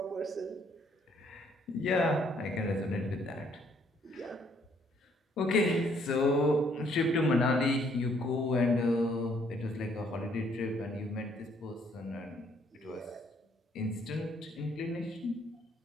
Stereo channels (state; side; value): normal; both; correlation 0.66